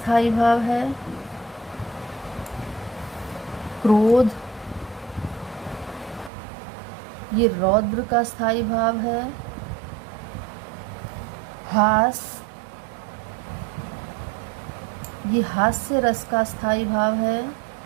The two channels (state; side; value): drops out; left; at 6.3 s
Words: भाव है। क्रोध, ये रौद्र का स्थायी भाव है। हास, ये हास्य रस का स्थायी भाव है।